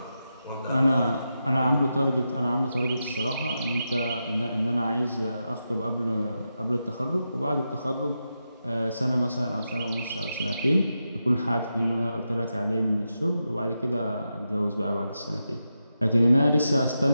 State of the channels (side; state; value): both; inverted; correlation -0.88